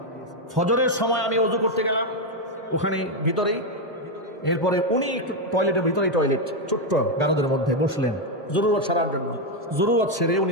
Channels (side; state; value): both; normal; correlation 0.04